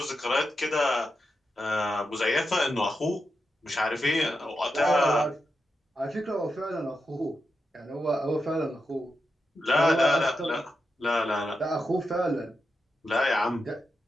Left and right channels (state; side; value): normal; both; correlation 0.87